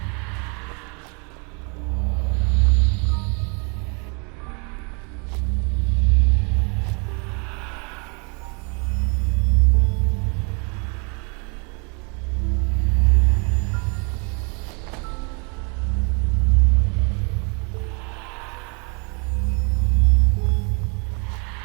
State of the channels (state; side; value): quieter; left; 34.5 dB